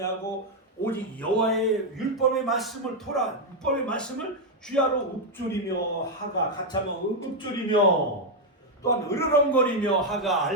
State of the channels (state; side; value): normal; both; correlation 0.01